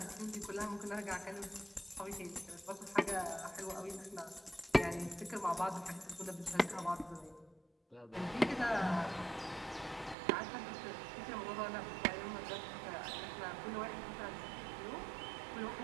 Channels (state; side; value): drops out; left; at 10.2 s